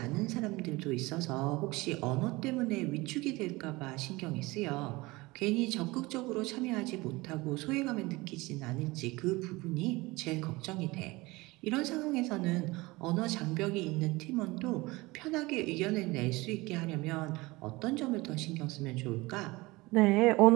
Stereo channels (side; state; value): left; quieter; 22.0 dB